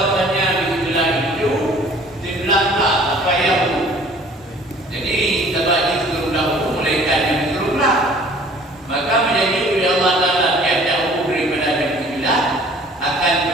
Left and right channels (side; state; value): both; normal; correlation 0.52